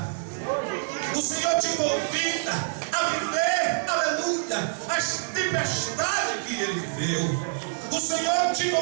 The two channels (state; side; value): silent; left; digital silence